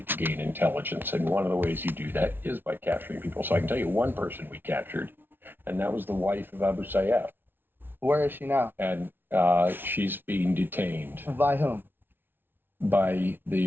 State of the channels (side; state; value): left; late; 0.10 ms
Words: to gain intelligence, and one of the ways you do that is by capturing people. So I can tell you one person we captured, and that was the wife of Abu Sayyaf. Where is she now? And she's being detained By whom? by